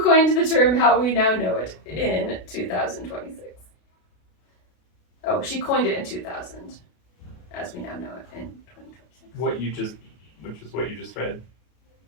the term how we now know it in 2026. Oh, she coined it in 2000, as we now know it in 2026. Which is what you just read?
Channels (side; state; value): right; late; 33 ms